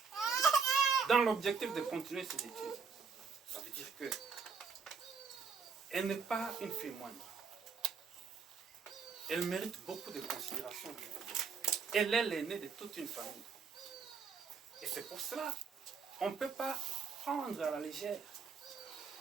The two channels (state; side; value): quieter; left; 5.4 dB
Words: dans l'objectif de continuer ses études. Ça veut dire que elle n'est pas une fille moindre. Elle mérite beaucoup de considération. Elle est l'aînée de toute une famille. Et c'est pour cela qu'on ne peut pas prendre à la légère.